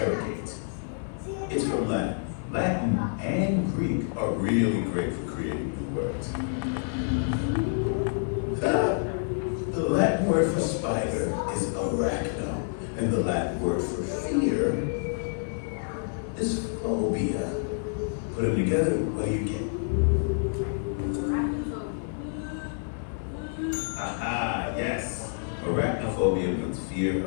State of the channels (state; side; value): silent; right; 59 dB below the other